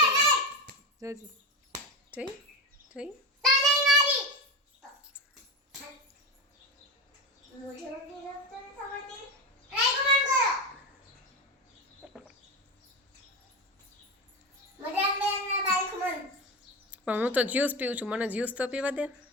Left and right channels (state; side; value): normal; both; correlation 0.19